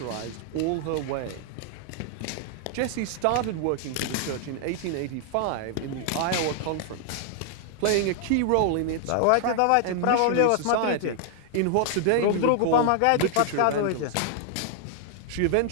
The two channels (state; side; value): different; both; correlation 0.00